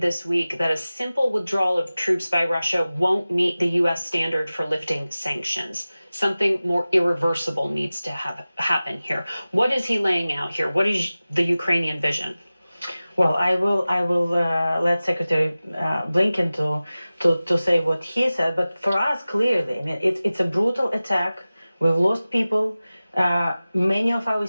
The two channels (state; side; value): inverted; both; correlation -0.97